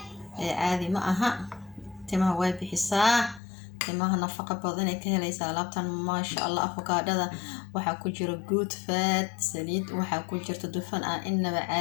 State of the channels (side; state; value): right; drops out; at 3.4 s